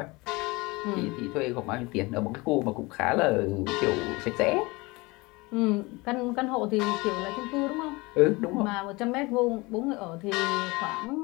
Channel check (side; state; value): right; quieter; 24.1 dB